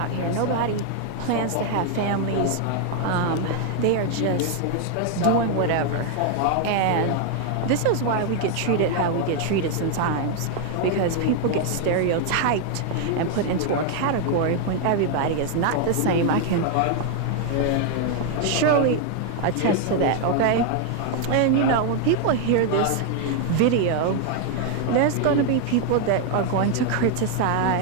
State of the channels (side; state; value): both; different; correlation 0.00